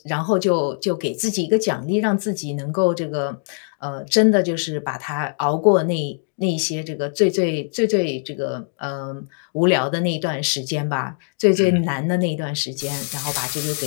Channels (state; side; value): silent; right; 61 dB below the other